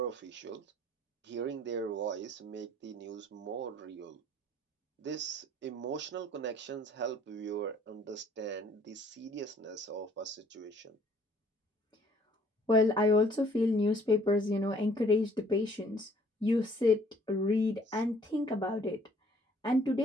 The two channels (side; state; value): both; normal; correlation 0.59